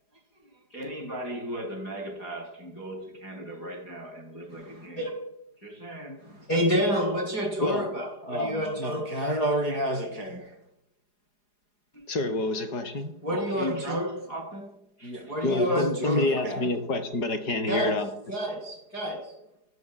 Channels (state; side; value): late; right; 4.8 ms